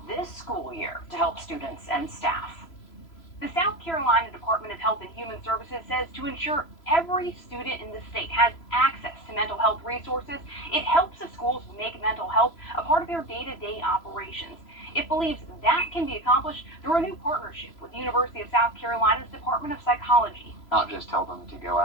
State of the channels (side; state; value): right; late; 3.0 ms